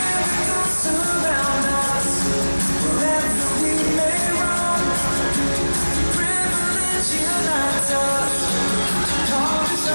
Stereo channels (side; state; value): both; inverted; correlation -1.00